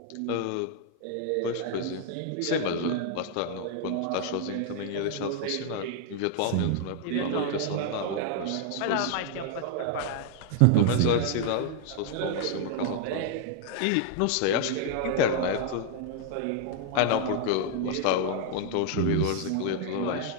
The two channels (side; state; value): both; different; correlation 0.00